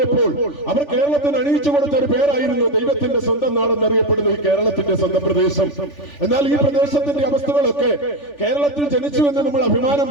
അവർ കേരളത്തിന് അണിയിച്ചു കൊടുത്ത ഒരു പേരായിരുന്നു ദൈവത്തിന്റെ സ്വന്തം നാടെന്നറിയപ്പെടുന്ന ഈ കേരളത്തിന്റെ സ്വന്തം പ്രദേശം. എന്നാൽ ഈ പ്രദേശത്തിന്റെ അവസ്ഥകളൊക്കെ കേരളത്തിൽ ജനിച്ചു എന്ന് നമ്മൾ അഭിമാനം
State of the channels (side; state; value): right; late; 3.4 ms